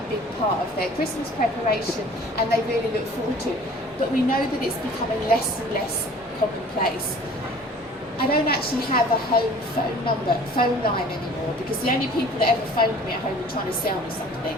big part of their Christmas preparation and they really look forward to. But we know that it's becoming less and less commonplace. I don't actually have a home phone line anymore, because the only people that ever phoned me at home were trying to sell me something.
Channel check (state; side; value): normal; both; correlation 0.48